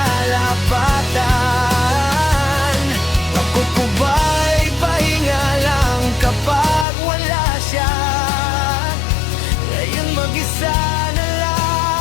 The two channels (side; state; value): right; drops out; at 6.9 s